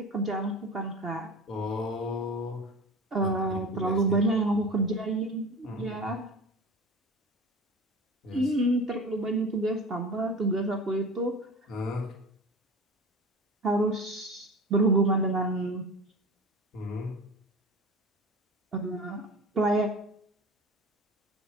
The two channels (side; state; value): both; normal; correlation 0.34